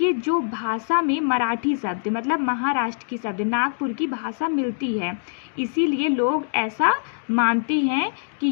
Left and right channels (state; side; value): silent; right; digital silence